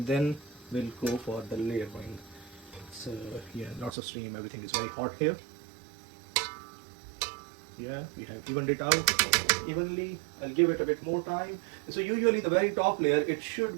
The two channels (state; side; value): drops out; left; at 4.0 s